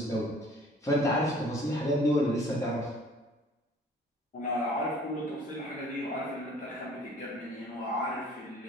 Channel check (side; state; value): both; normal; correlation 0.53